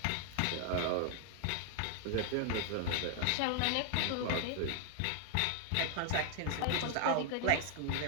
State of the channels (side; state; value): both; different; correlation 0.00